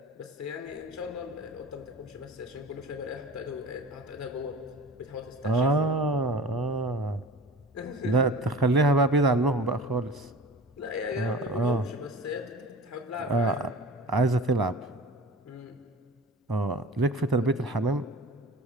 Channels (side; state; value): both; normal; correlation 0.38